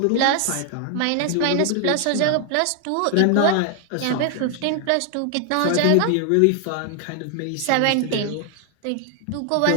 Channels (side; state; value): both; different; correlation 0.00